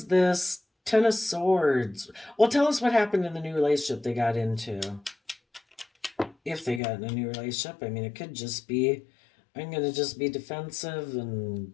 this Ten of Swords? Well, tell us what happened in the new relationship they got into. If they got in a new relationship, I mean, it could just be, I'm going to just be defensive and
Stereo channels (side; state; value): right; drops out; at 6.8 s